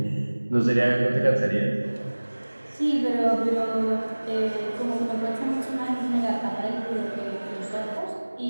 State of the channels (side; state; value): both; inverted; correlation -1.00